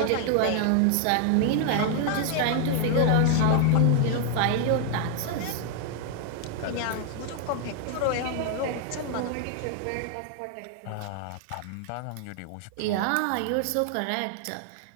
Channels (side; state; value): both; different; correlation 0.00